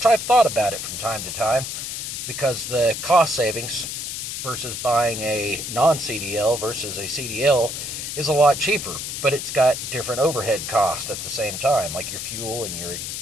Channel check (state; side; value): noise; left; hiss, 5 dB below the sound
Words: I've thought about it from time to time because the cost savings versus buying a non-CDL versus a CDL is a lot cheaper, but it's got different overhead costs at the same time, like your fuel and